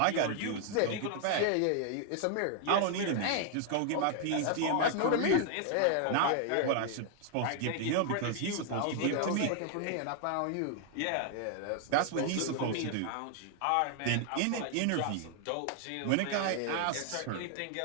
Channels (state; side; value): different; both; correlation 0.00